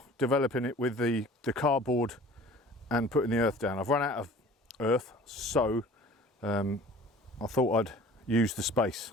developing it with the cardboard and putting the earth down. I've run out of earth, so I thought I'd use the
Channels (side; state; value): both; normal; correlation 0.46